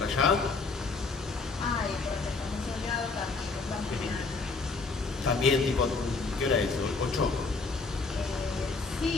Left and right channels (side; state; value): right; quieter; 4.0 dB